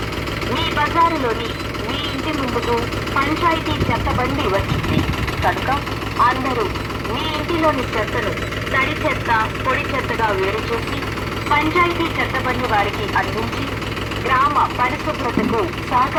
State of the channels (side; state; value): both; identical; correlation 1.00